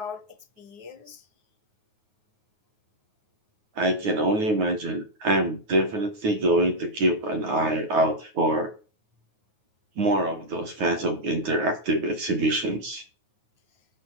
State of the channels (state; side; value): late; left; 9.5 ms